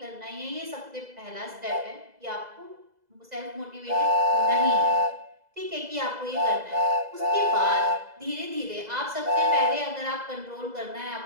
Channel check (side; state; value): left; late; 2.0 ms